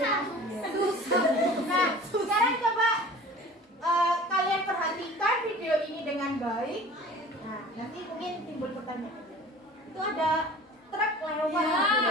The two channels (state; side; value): normal; both; correlation 0.43